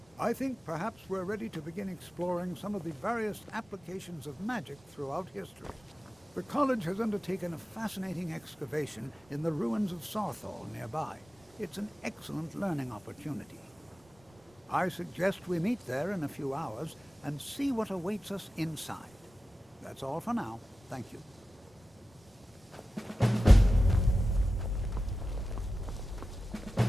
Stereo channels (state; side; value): normal; both; correlation 0.94